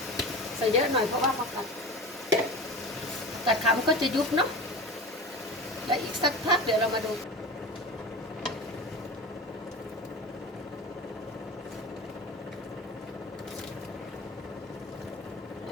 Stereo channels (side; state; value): both; normal; correlation 0.30